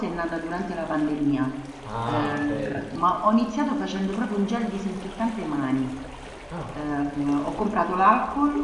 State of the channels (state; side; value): identical; both; correlation 1.00